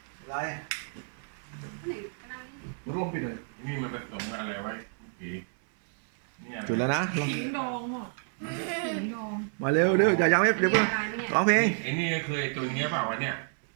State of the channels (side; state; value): left; silent; 58 dB below the other